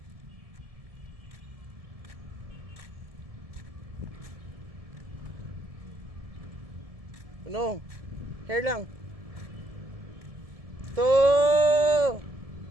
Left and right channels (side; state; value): left; late; 1.7 ms